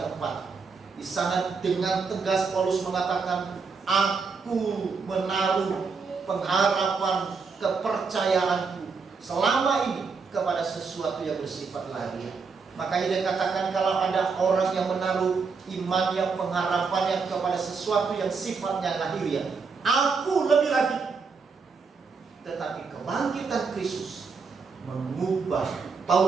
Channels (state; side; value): quieter; left; 5.0 dB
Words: 4. Di sana dengan tegas Paulus mengatakan, aku menaruh pengharapan kepercayaanku selama ini kepada sesuatu yang bersifat lahiriah. Makanya dia katakan, kalau ada orang yang menaruh imannya, pengharapannya kepada sesuatu yang sifatnya lahiriah, aku lebih lagi. Tetapi kebangkitan Kristus mengubah